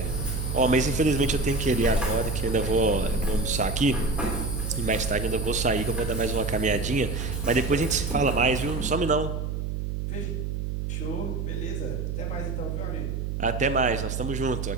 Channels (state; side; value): noise; right; hum, 3 dB below the sound